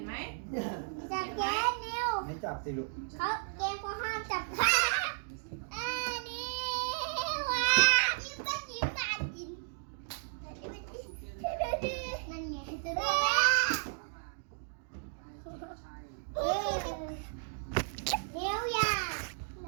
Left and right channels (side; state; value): left; silent; digital silence